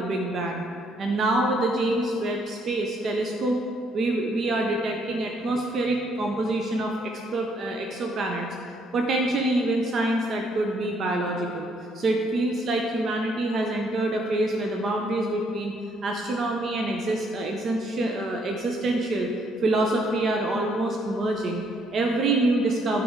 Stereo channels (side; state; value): both; normal; correlation 0.69